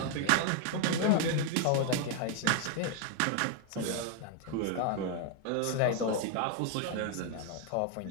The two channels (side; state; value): both; different; correlation 0.01